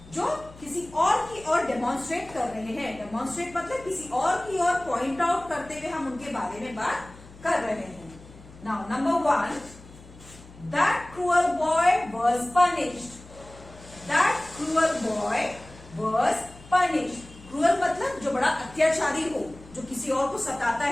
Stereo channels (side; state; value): left; noise; hum, 20 dB below the sound